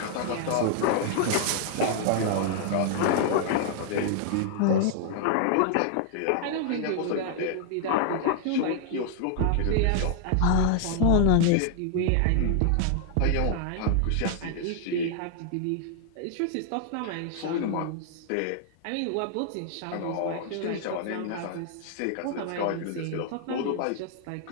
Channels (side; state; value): both; different; correlation 0.00